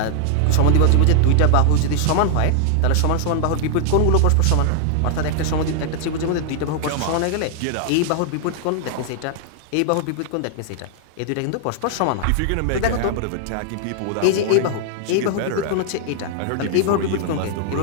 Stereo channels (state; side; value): different; both; correlation 0.00